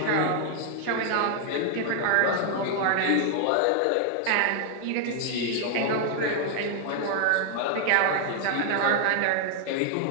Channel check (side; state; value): both; different; correlation 0.00